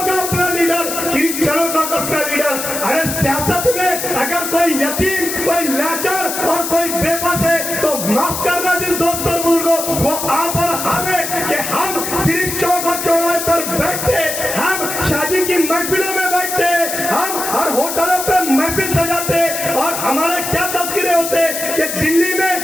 का अपना लीडर, क्रिश्चियनों का अपना लीडर। अरे सियासत में अगर कोई यतीम, कोई लाचार और कोई बेबस है तो माफ करना जिस दोस्त और बुजुर्गों, वो आप और हमें कि हम सिर्फ चौक और चौराहे पर बैठते, हम शादी की महफिलों में बैठते, हम हर होटलों पर महफिल सजाते और हमारे क्या तस्करे होते कि दिल्ली में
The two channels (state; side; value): noise; left; hiss, 4 dB below the sound